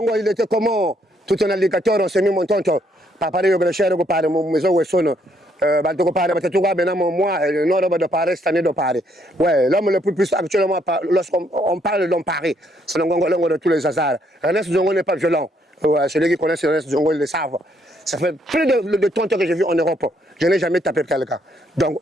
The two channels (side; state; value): both; normal; correlation 0.71